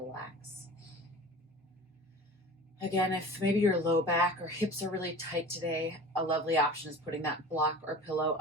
Again, if maybe your low back or hips are really tight today, a lovely option is putting that block or pillow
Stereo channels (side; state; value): both; normal; correlation 0.38